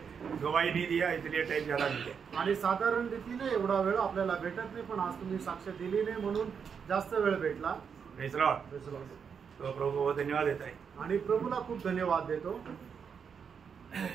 गवाही नहीं दिया इसलिए टाइम ज्यादा मिल गया। आणि साधारण रीतीने एवढा वेळ आपल्याला भेटत नाही, पण आज तुम्ही साक्ष दिली नाही म्हणून जास्त वेळ भेटला। Praise Lord. तो प्रभु को धन्यवाद देता है आणि प्रभूला खूप धन्यवाद देतो।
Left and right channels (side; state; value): left; quieter; 6.7 dB